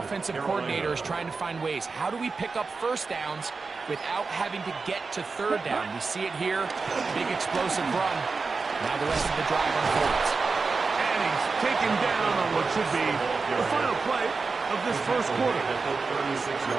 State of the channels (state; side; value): quieter; left; 4.4 dB